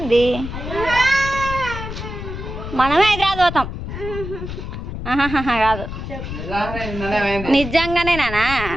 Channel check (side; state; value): left; noise; rumble, 7 dB below the sound